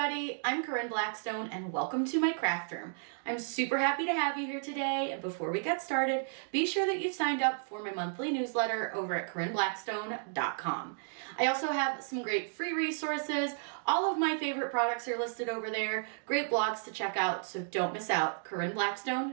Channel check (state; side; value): silent; left; digital silence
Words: I'm Corinne Blackstone and welcome to my craft room. I'm super happy to have you here today, and before we get started, be sure that you've signed up for my monthly newsletter over at CorinneBlackstone.com. I also have some great free resources. All of my favorite products are listed over there. Great blogs to check out, so don't miss out,